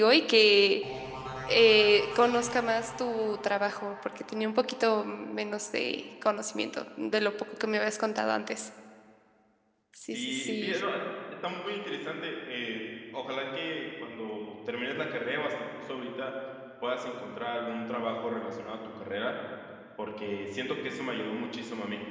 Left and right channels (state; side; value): identical; both; correlation 1.00